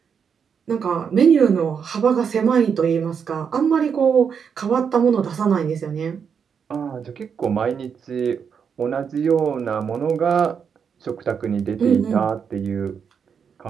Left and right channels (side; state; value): left; quieter; 6.8 dB